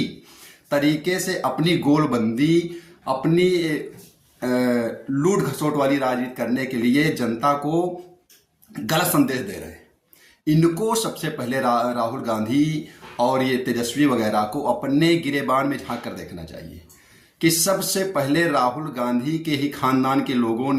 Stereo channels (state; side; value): identical; both; correlation 1.00